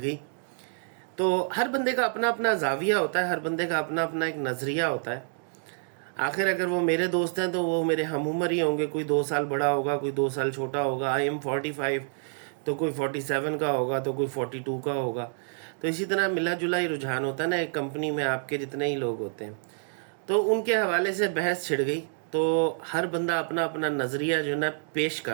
گئی۔ تو ہر بندے کا اپنا اپنا زاویہ ہوتا ہے، ہر بندے کا اپنا اپنا ایک نظریہ ہوتا ہے۔ آخر اگر وہ میرے دوست ہیں تو وہ میرے ہم عمر ہی ہوں گے، کوئی 2 سال بڑا ہوگا، کوئی 2 سال چھوٹا ہوگا۔ آئی ایم 45 تو کوئی 47 کا ہوگا، تو کوئی 42 کا ہوگا۔ تو اسی طرح ملا جلا ہی رجحان ہوتا ہے نا ایک کمپنی میں، آپ کے جتنے ہی لوگ ہوتے ہیں۔ تو ان کے حوالے سے بحث چھڑ گئی، تو ہر بندہ اپنا اپنا نظریہ جو ہے نا پیش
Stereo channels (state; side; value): silent; left; digital silence